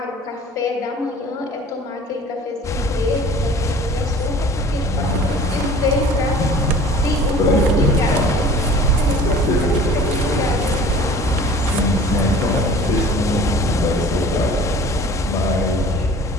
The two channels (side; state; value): both; normal; correlation 0.46